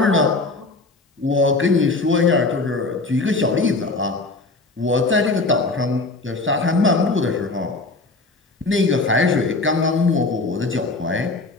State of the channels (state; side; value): quieter; right; 3.4 dB